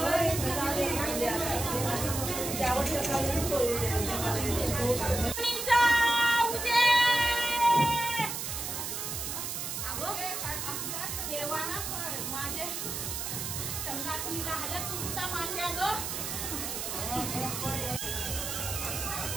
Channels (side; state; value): right; noise; hiss, 4 dB below the sound